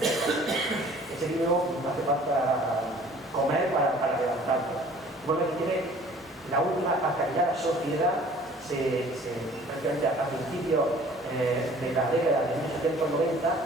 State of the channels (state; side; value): normal; both; correlation 0.51